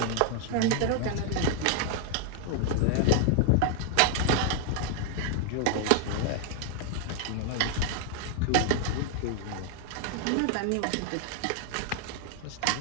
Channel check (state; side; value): different; both; correlation 0.00